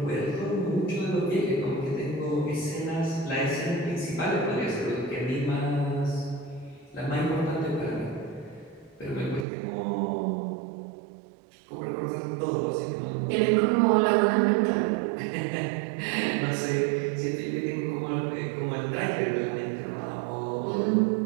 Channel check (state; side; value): drops out; left; at 9.5 s